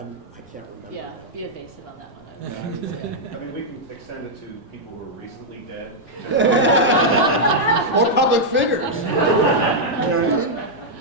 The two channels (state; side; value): normal; both; correlation -0.04